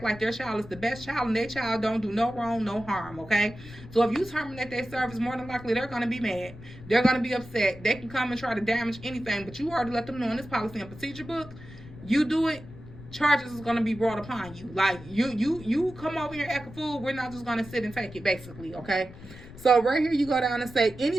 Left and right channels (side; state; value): left; noise; rumble, 17 dB below the sound